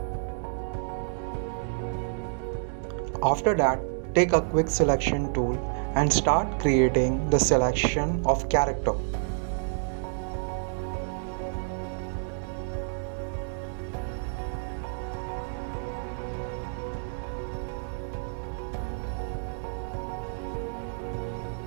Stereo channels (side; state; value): left; silent; 59 dB below the other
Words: After that, take a quick selection tool and start creating the selection of character.